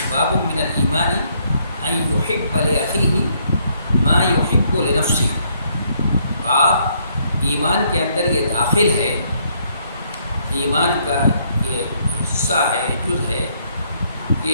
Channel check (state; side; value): inverted; both; correlation -0.69